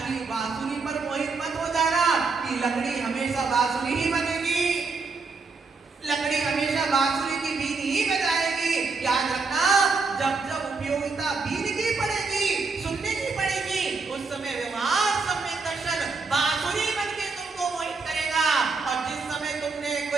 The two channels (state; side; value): quieter; left; 4.3 dB